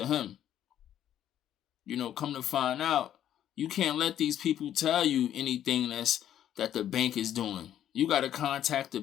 him. Come to find out, you can't let these people tell you anything that the bank is doing. You got to contact the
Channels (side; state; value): right; quieter; 10.9 dB